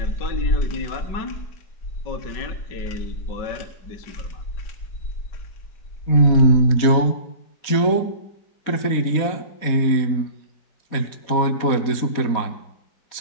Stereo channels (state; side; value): late; right; 4.2 ms